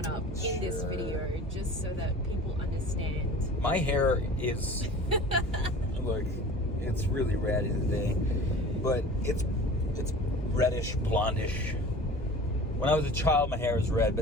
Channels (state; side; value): normal; both; correlation 0.41